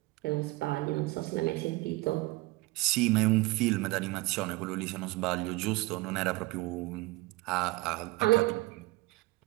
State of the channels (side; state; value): left; quieter; 21.8 dB